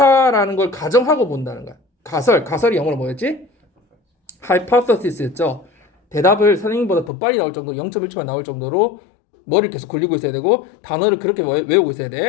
걸 가정하고 본다는 거야. 가설이 영어로 뭐였지? hypothesis였죠. 대답을 선생님보다 더 빨리 나올 정도로 0.1초만 나올 정도로 머리를 계속 굴리고 있어야 되고 단어를 그렇게 외우고 있어야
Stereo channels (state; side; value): drops out; right; at 7.1 s